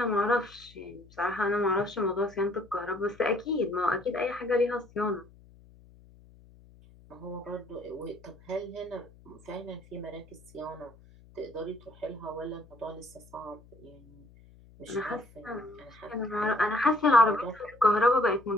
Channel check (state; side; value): noise; left; hum, 24 dB below the sound